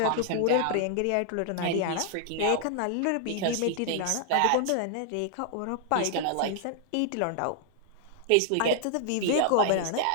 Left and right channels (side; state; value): both; different; correlation 0.00